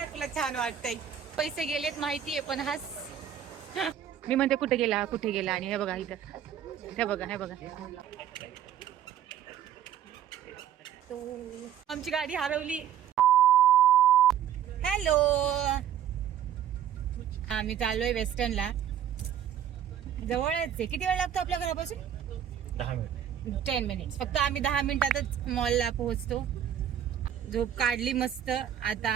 तुला छान वाटतंय. पैसे गेलेत माहितीये पण हास. मी म्हणते कुठे गेला आणि हे बघा इथं, हे बघा आमची गाडी हरवली. हॅलो, आम्ही चाललोय वेस्टर्नला. जवळच आहे. किती वेळ लागतो आपल्या घरापासून? 10 मिनिट. 10 मिनिट्स फक्त. आम्ही 10 मिनिटातच मॉलला पोहोचतो. झोप काढली मस्त, आता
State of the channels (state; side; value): quieter; left; 9.8 dB